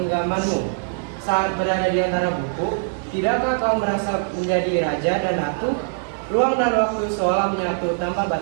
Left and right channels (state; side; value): silent; left; digital silence